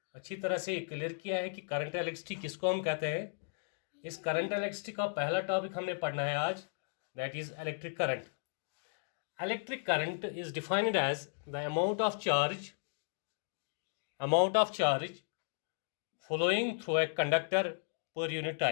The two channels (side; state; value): right; silent; digital silence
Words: अच्छी तरह से क्लियर किया है कि करंट इलेक्ट्रिसिटी किसको हम कहते हैं। इस करंट इलेक्ट्रिसिटी का पहला टॉपिक हमने पढ़ना है आज, that is electric current. Electric current is defined as the amount of charge flowing through a conductor per unit